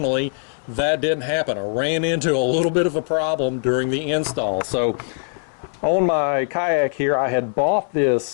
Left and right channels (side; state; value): right; silent; 65 dB below the other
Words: that didn't happen. I ran into a little bit of a problem during the install. So on my kayak here, I had bought